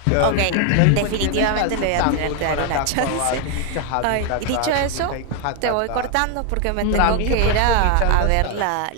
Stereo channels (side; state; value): both; different; correlation 0.01